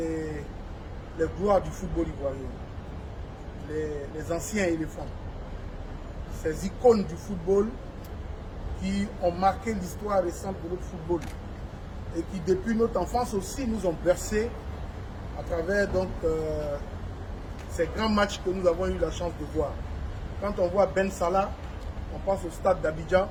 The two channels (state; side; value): identical; both; correlation 1.00